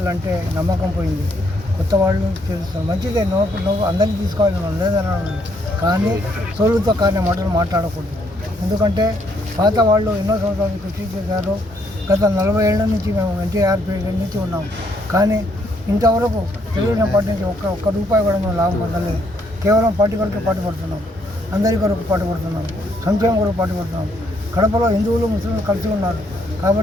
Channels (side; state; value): both; normal; correlation 0.71